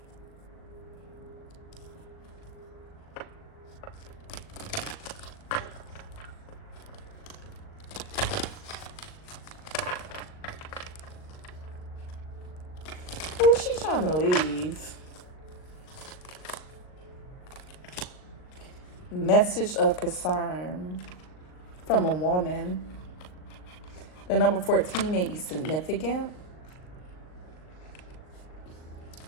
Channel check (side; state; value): right; late; 39 ms